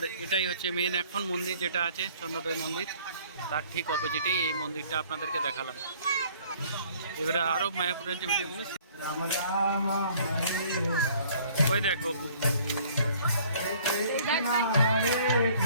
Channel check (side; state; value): both; inverted; correlation -0.56